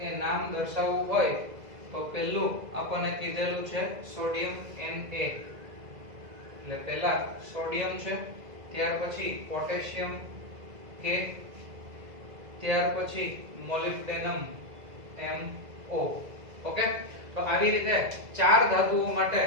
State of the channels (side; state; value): left; late; 2.0 ms